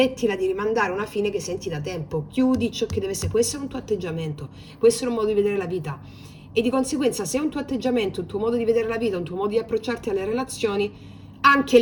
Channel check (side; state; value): both; identical; correlation 1.00